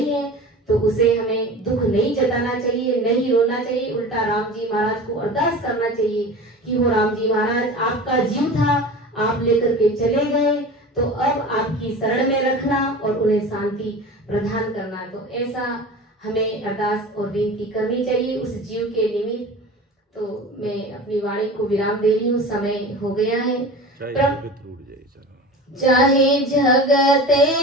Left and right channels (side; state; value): both; normal; correlation 0.35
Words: है तो उसे हमें दुख नहीं जताना चाहिए, नहीं रोना चाहिए। उल्टा राम जी महाराज को अरदास करना चाहिए कि वो राम जी महाराज आपका जीव था, आप लेकर के चले गए, तो अब आपकी शरण में रखना और उन्हें शांति प्रदान करना। तो ऐसा हमें अरदास और विनती करनी चाहिए उस जीव के निमित्त। तो मैं अपनी वाणी को विराम दे रही हूँ, समय हो गया है। चाहे जगत